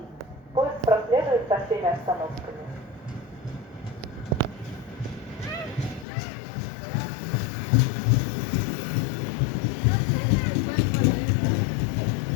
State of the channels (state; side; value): drops out; right; at 6.1 s